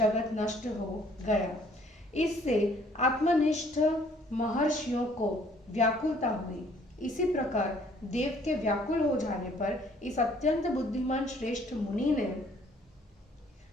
नष्ट हो गया। इससे आत्मनिष्ठ महर्षियों को व्याकुलता हुई। इसी प्रकार देव के व्याकुल हो जाने पर इस अत्यंत बुद्धिमान श्रेष्ठ मुनि ने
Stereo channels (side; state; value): both; normal; correlation 0.60